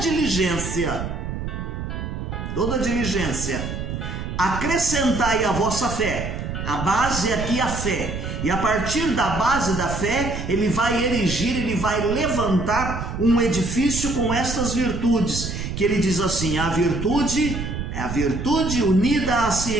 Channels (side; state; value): right; noise; rumble, 5 dB below the sound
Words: acrescentai a vossa fé. A base aqui é a fé. E a partir da base da fé, ele vai erigir, ele vai levantar um edifício com estas virtudes, que ele diz assim: a virtude é a virtude unida à